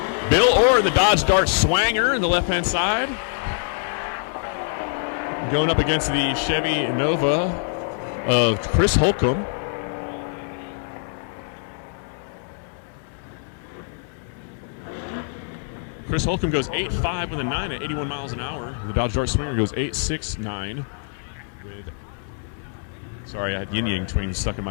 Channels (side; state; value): right; silent; 62 dB below the other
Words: Bill Orr, the Dodge Dart Swanger in the left-hand side. Going up against the Chevy Nova of Chris Holcomb. Chris Holcomb goes 8.5 with a 9 at 81 miles an hour. The Dodge Dart Swanger goes 8.69 with... Sorry, I had yin yang twins stuck in